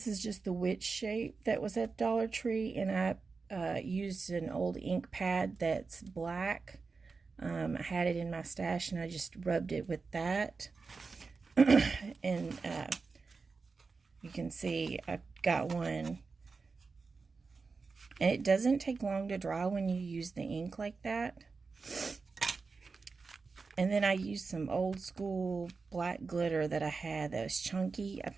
is just the witch shape that was at Dollar Tree, and I used an old ink pad that's black. I had it in my stash and I just rubbed it with that. And you can see I've got one. And it doesn't take long to dry when you use the ink like that. And then I used some old school black glitter that I had that was chunky. I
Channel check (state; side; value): quieter; left; 4.5 dB